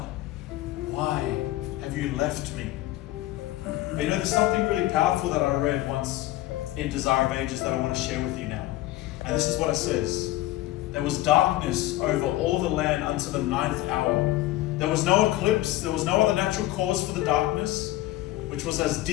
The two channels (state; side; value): quieter; right; 16.1 dB